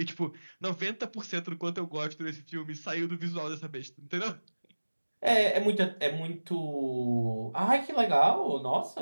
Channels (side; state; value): both; inverted; correlation -1.00